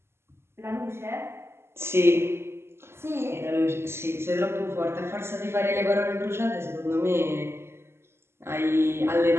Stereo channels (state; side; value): late; left; 0.12 ms